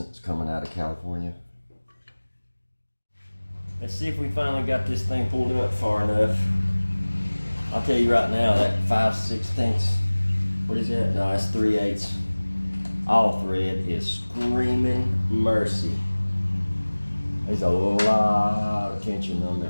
coming out of California. Let's see if we finally got this thing pulled up far enough. I'll tell you right now, that 5/16, what is that? No, that's 3/8. All thread is screaming mercy. There's a lot of tension on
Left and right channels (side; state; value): both; inverted; correlation -1.00